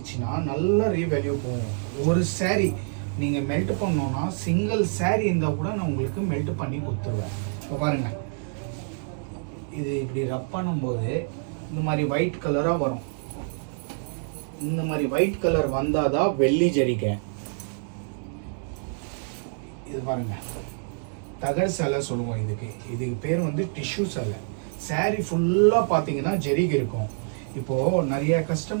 நல்லா ரீவேல்யூ போகும். ஒரு சேரீ நீங்கள் மெல்ட் பண்ணோன்னா சிங்கிள் சேரீ இருந்தால் கூட நான் உங்களுக்கு மெல்ட் பண்ணி கொடுத்துருவேன். இப்போ பாருங்கள், இது இப்படி ரப் பண்ணும்போது இந்த மாதிரி ஒயிட் கலராக வரும். இந்த மாதிரி ஒயிட் கலர் வந்தால் தான் வெள்ளி ஜரிக்கை. இது பாருங்க, தகடு சேலை சொல்லுவோம். இதுக்கு பேர் வந்து டிஷ்யூ சேலை. சாரீ ஃபுல்லாக பார்த்தீங்கன்னா ஜரிகை இருக்கும். இப்போது நிறைய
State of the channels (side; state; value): left; silent; 61 dB below the other